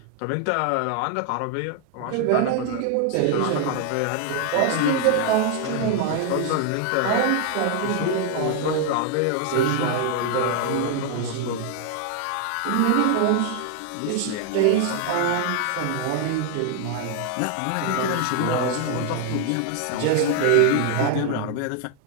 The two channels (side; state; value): both; different; correlation 0.00